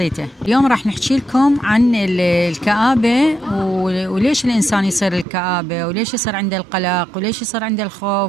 اليوم راح نحكي لكم عن الكآبة وليش الإنسان يصير الكآبة، وليش يصير عنده القلق، وليش يصير عنده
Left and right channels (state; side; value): drops out; left; at 5.2 s